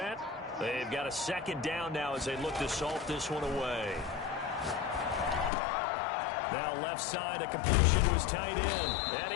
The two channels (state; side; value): drops out; right; at 5.5 s